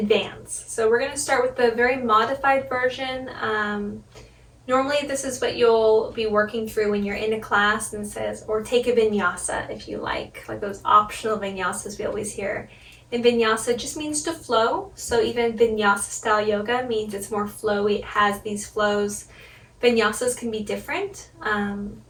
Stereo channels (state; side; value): identical; both; correlation 1.00